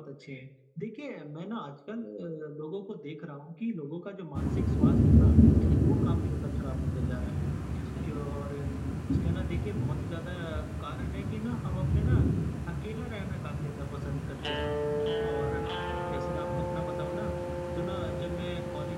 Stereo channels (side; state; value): both; identical; correlation 1.00